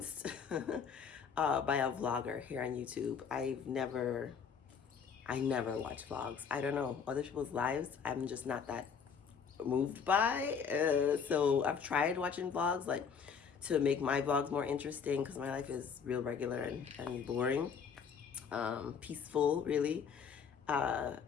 by a vlogger here on YouTube. I never watch vlogs. I don't know, other people's lives, I'm just not that moved by. So I've tried watching vlogs, like, to make my vlogs more interesting, because my life is real regular and boring, peaceful, really. Tried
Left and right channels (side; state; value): right; quieter; 6.4 dB